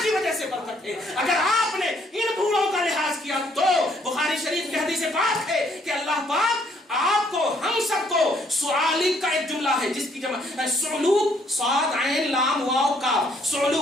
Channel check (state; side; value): normal; both; correlation 0.67